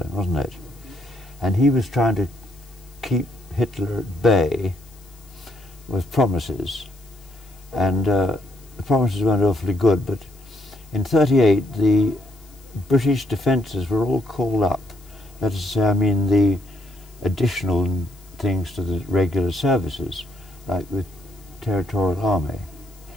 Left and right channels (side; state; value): left; noise; hiss, 26 dB below the sound